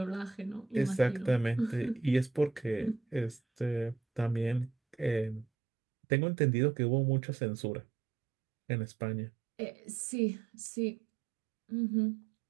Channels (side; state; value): left; drops out; at 5.5 s